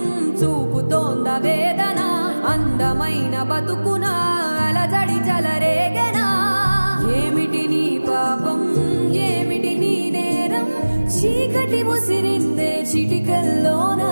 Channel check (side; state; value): both; inverted; correlation -1.00